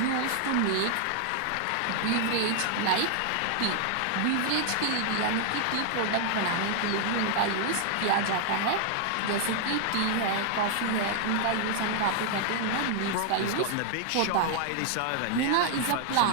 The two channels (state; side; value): different; both; correlation 0.00